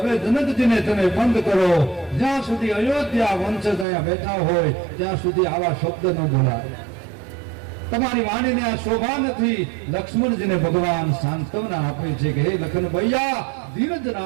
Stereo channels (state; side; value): drops out; left; at 3.9 s